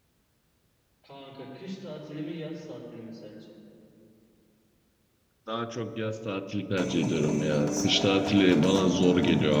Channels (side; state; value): both; identical; correlation 1.00